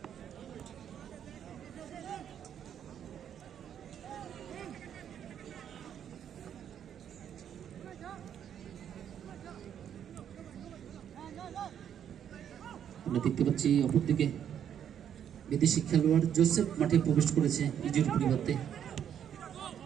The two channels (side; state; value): left; quieter; 9.2 dB